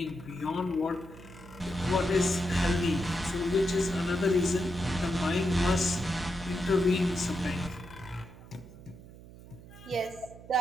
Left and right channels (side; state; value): right; noise; hum, 18 dB below the sound